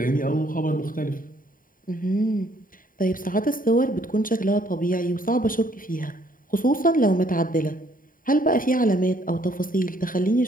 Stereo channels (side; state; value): right; late; 0.40 ms